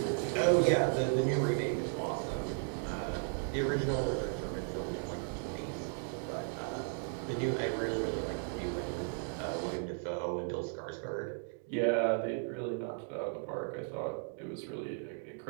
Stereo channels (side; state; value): left; silent; 54 dB below the other